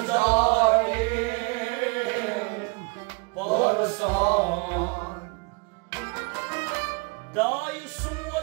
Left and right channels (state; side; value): quieter; left; 29.9 dB